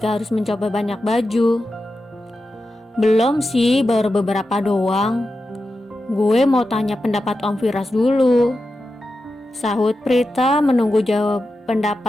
harus mencoba banyak baju. Belum sih, baru beberapa doang. Gue mau tanya pendapat Om Firas dulu. Sahut Prita menunggu jawab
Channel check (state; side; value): normal; both; correlation 0.91